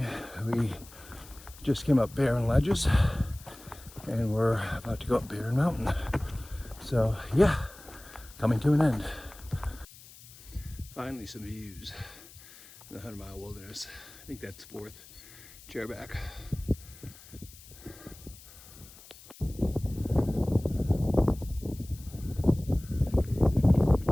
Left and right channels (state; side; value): noise; left; hiss, 20 dB below the sound